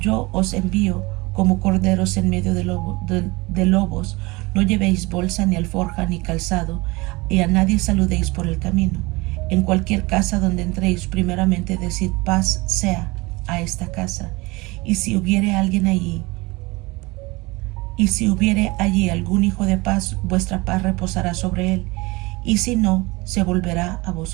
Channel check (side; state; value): left; quieter; 23.6 dB